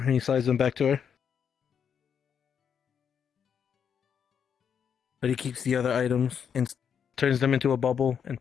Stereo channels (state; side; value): quieter; right; 7.6 dB